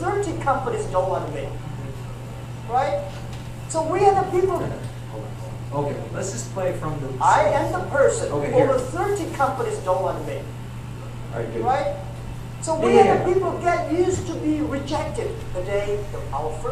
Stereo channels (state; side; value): identical; both; correlation 1.00